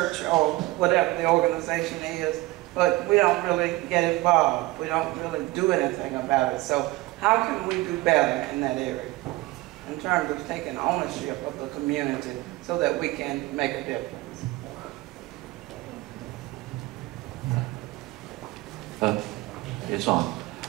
or whatever the organization is, but we don't really get involved. We don't really do anything about it. So how can we do better in that area in terms of taking ownership of the community so that we can make a difference? It's on.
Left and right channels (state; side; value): quieter; left; 19.8 dB